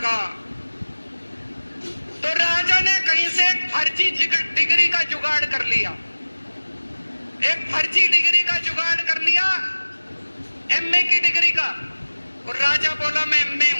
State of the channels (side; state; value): both; inverted; correlation -1.00